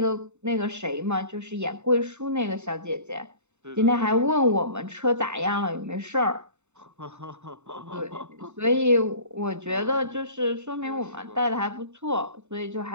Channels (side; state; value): left; late; 0.83 ms